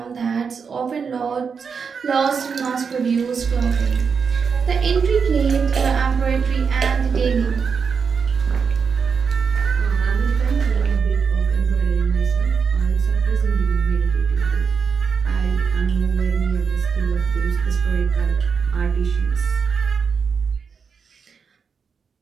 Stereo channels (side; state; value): left; quieter; 5.9 dB